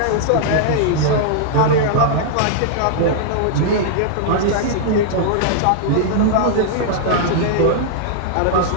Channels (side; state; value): both; different; correlation -0.01